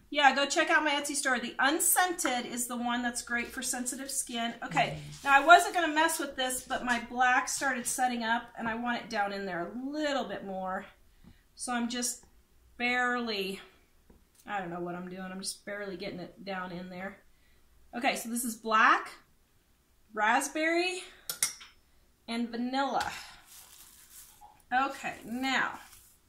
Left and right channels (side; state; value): both; identical; correlation 1.00